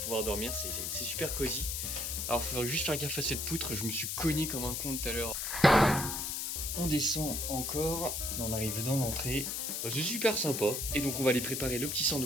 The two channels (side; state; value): left; noise; hiss, 2 dB below the sound